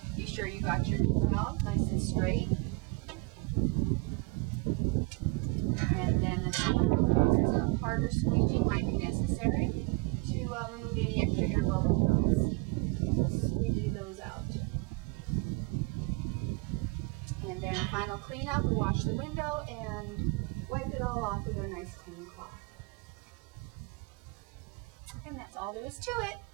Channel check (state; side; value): quieter; left; 24.7 dB